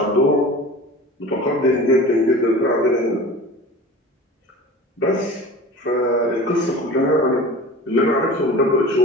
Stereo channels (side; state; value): both; normal; correlation 0.37